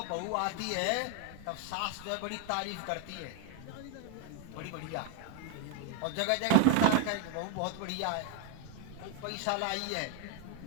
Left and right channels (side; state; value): both; different; correlation 0.01